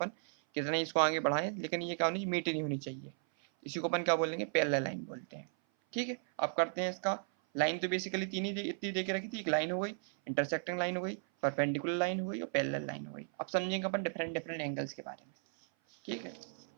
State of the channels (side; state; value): left; silent; 54 dB below the other